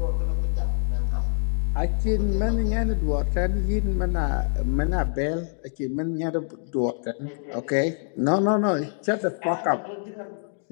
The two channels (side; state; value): right; silent; digital silence